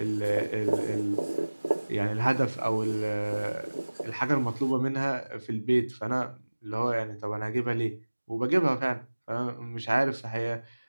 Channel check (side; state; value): both; inverted; correlation -1.00